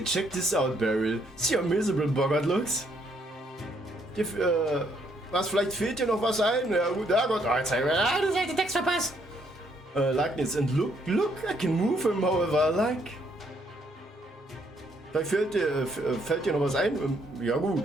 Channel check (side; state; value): both; normal; correlation 0.70